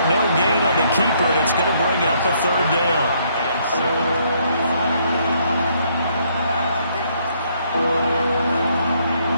no gain on the keeper, and it's going to bring up a 3rd down. So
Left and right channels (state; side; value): inverted; both; correlation -0.69